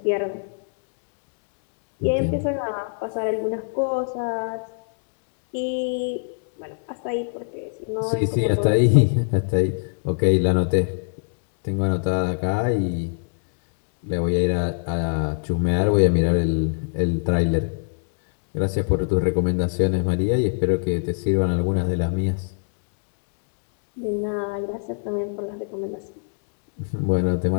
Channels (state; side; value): silent; right; digital silence